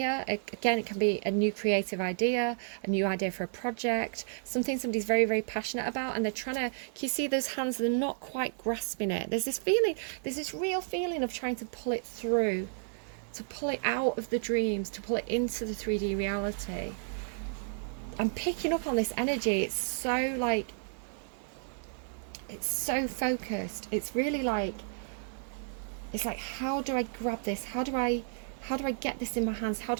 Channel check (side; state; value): left; silent; digital silence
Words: Again, it can be a new creative idea, a new idea for a project, something somebody's very, very passionate about, and they're trying to, can you see those hands? They're not quite grasping it. There's this real feeling of trying to pull it through, to pull it out of the dreams, to pull it into the 3D reality. I'm picking up on this energy. It's so focused. It's really like, it's like, how do I grab this? How do I get this in my hands? How